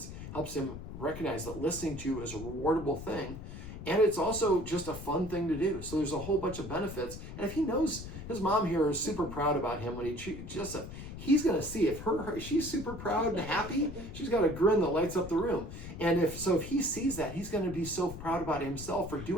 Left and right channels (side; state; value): left; noise; rumble, 10 dB below the sound